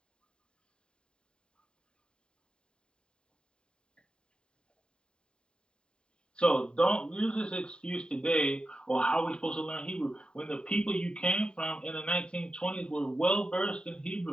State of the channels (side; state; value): right; late; 0.050 ms